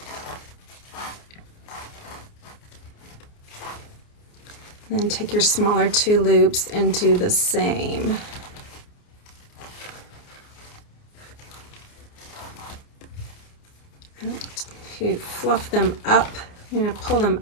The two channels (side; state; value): right; late; 29 ms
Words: Then take your smaller two loops and do the same. And to fluff them up, you're going to pull them